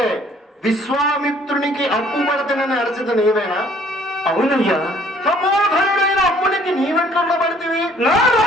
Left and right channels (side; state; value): both; normal; correlation 0.59